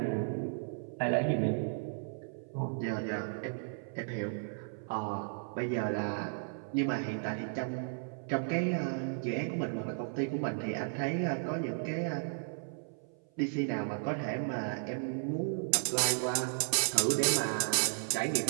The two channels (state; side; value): silent; left; 55 dB below the other